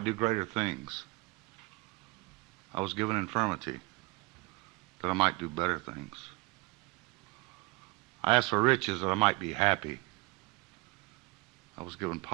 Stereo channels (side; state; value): left; quieter; 25.1 dB